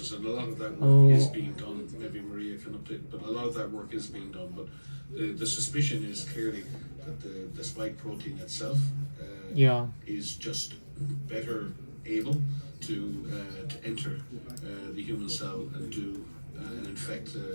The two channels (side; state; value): both; inverted; correlation -1.00